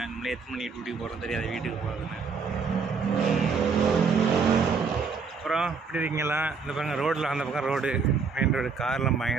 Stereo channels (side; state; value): left; quieter; 5.3 dB